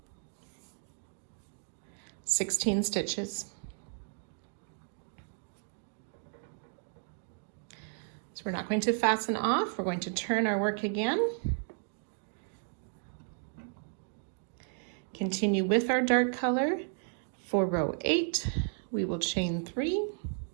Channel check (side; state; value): left; silent; 55 dB below the other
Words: (16 stitches). So we're not going to fasten off, we're going to turn our work again. Continue with our dark color. For row 8, we will chain 3,